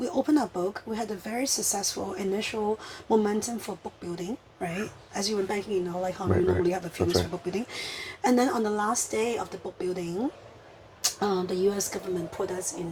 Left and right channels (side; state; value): both; identical; correlation 1.00